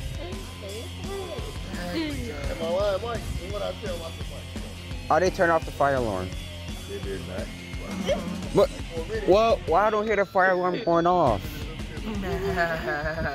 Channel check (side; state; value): both; identical; correlation 1.00